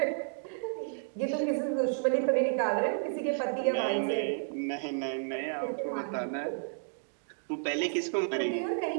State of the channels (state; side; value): silent; left; digital silence